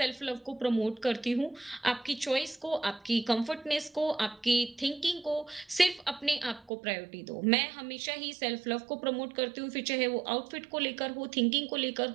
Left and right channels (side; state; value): left; drops out; at 6.7 s